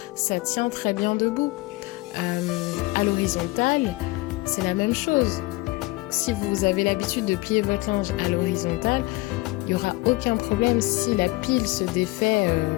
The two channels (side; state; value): right; quieter; 21.9 dB